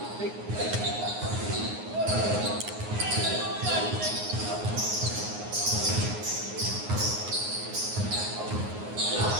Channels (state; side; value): late; left; 9.6 ms